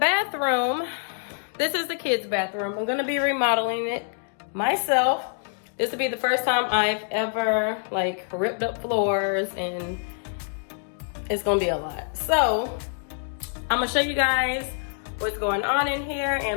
this is the kids' bathroom. I'm gonna be remodeling it myself. This will be the first time I've ever like ripped up floors, and it's gonna be a lot. So I'm gonna show you guys what's going on in here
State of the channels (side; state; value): right; silent; digital silence